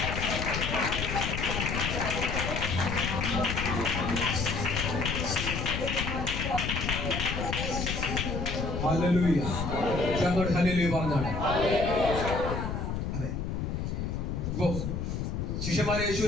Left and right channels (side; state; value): left; noise; rumble, 2 dB below the sound